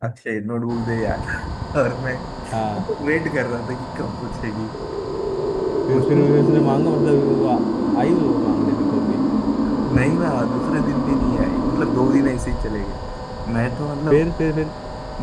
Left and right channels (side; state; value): both; identical; correlation 1.00